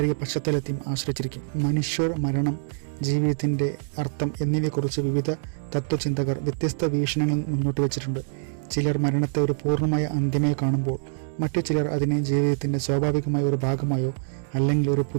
പശ്ചാത്തലത്തെയും ആശ്രയിച്ചിരിക്കും. മനുഷ്യർ, മരണം, ജീവിതത്തിൻ്റെ അർത്ഥം എന്നിവയെക്കുറിച്ച് വിവിധ തത്വചിന്തകർ വ്യത്യസ്ത വീക്ഷണങ്ങൾ മുന്നോട്ട് വച്ചിട്ടുണ്ട്. ചിലർ മരണത്തെ ഒരു പൂർണ്ണമായ അന്ത്യമായി കാണുമ്പോൾ മറ്റു ചിലർ അതിനെ ജീവിതത്തിൻ്റെ സ്വാഭാവികമായ ഒരു ഭാഗമായോ അല്ലെങ്കിൽ ഒരു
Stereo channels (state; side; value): silent; left; digital silence